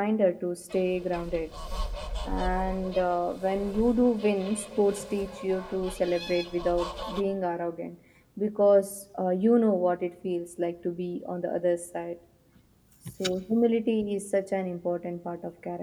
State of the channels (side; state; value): both; identical; correlation 1.00